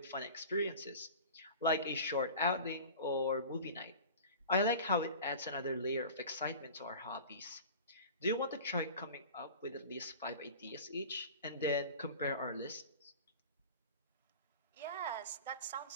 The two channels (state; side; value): inverted; both; correlation -0.37